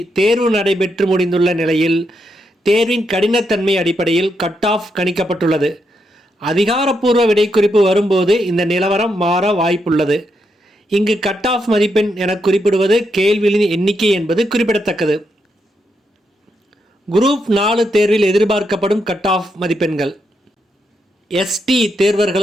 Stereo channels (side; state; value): both; normal; correlation 0.81